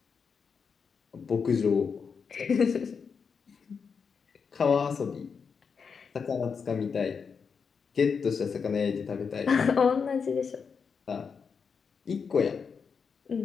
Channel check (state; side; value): quieter; right; 5.9 dB